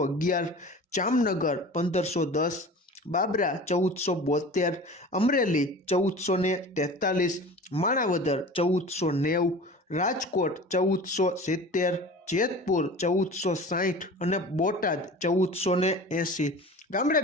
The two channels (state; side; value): normal; both; correlation 0.38